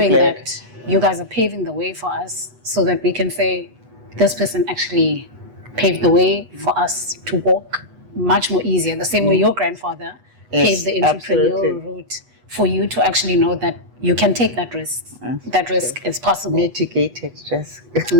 that you guys are paving the way for us so that we can say, this person actually paved the way for us to walk much more easier, the same way your grandfather paved the entrepreneurial route for you to actually know that you can take that risk. That risk is possible. Mitigated risk.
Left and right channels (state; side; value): late; left; 8.2 ms